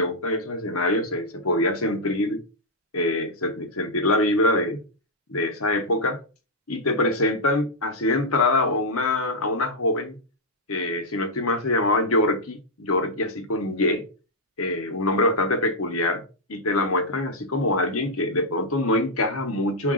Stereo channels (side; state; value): both; normal; correlation -0.05